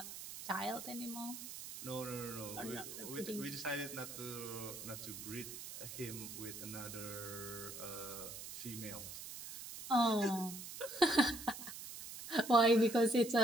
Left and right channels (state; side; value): noise; right; hiss, 10 dB below the sound